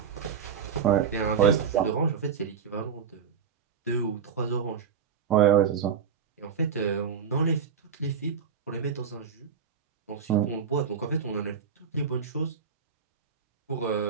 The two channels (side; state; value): left; quieter; 6.8 dB